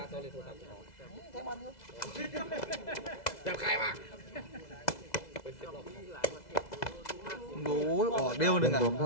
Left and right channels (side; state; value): right; late; 2.0 ms